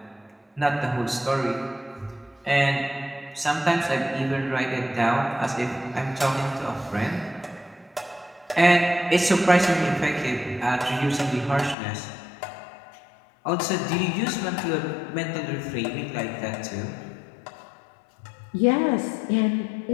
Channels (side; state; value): right; drops out; at 11.8 s